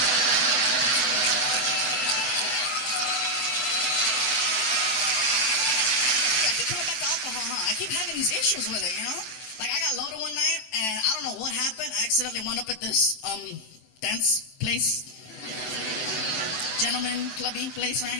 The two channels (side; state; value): right; late; 23 ms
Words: I keep coming back to alcohol, huh? I keep having these issues with it, you know? Like, I got loaded one night, and I don't know what happened. I accidentally wound up at this, dance place. Gentleman clubby place,